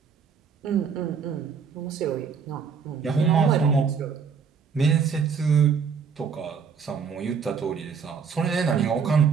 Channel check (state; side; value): quieter; left; 6.2 dB